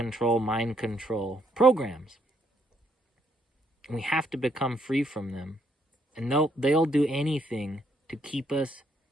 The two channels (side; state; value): both; normal; correlation 0.73